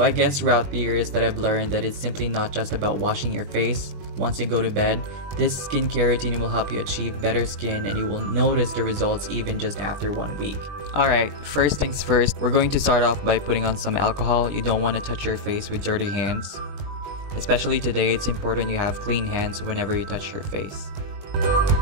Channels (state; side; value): late; left; 20 ms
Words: I guess throughout the years that I've learned that it's simply not just about washing your face once you go to bed. This skincare routine will help you achieve better skin and you will notice the results even just after 1 week. Alright, first things first, we're going to start off by putting on some alcohol. You don't want to touch your face with dirty hands. Especially today, it's important you have clean hands whenever you touch your face.